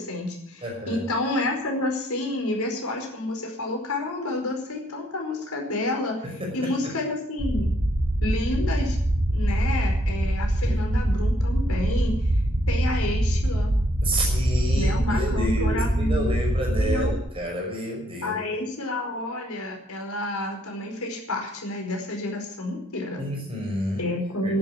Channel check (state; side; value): normal; both; correlation 0.68